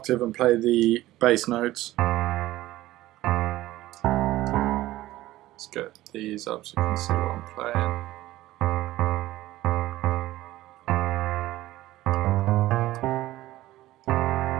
and play the bass notes. Let's get these up so you can see what I'm playing.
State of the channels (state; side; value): quieter; left; 16.1 dB